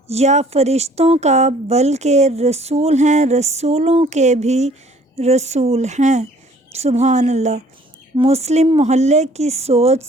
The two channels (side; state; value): both; normal; correlation 0.56